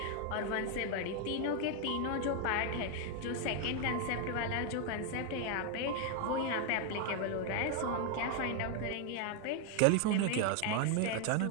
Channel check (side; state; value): both; different; correlation 0.01